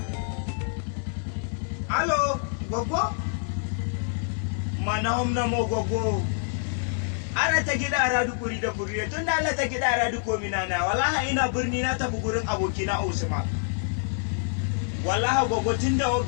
Alo, gwaggo? Mana homna mo gwaggo. Ara ta gida aradu kuri da kuri tun da Allah ta gida aradu ko minana wallahi ina birni na tafi gurin abokina Usman. Wallahi gwaggo tun da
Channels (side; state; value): right; silent; digital silence